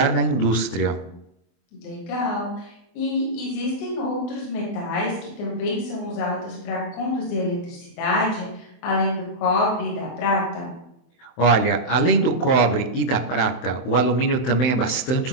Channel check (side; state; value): right; late; 24 ms